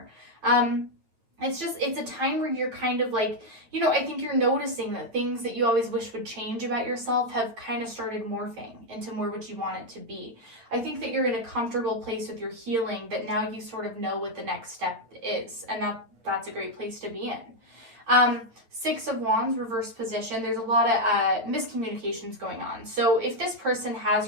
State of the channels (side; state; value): left; late; 9.1 ms